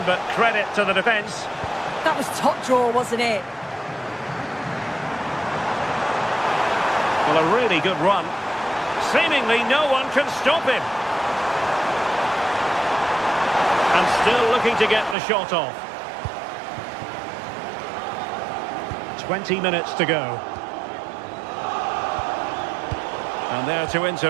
but credit to the defence. That was top draw, wasn't it? Well, a really good run. Seemingly no one can stop him. And still looking to get the shot off. 20 minutes to go. And there to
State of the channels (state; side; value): drops out; left; at 15.2 s